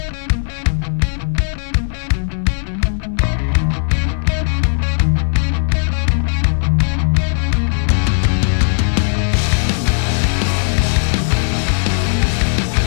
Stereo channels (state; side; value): silent; right; 59 dB below the other